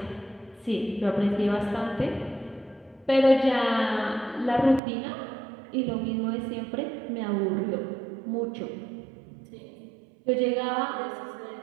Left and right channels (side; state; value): left; drops out; at 4.8 s